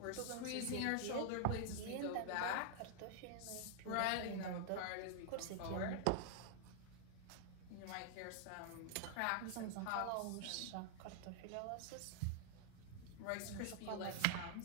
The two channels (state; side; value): different; both; correlation -0.01